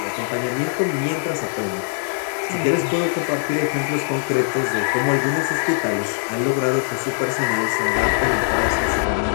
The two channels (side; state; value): right; silent; digital silence